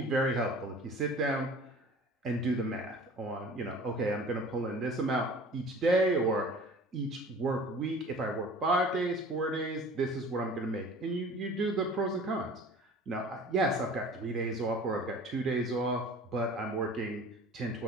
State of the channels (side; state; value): both; normal; correlation 0.44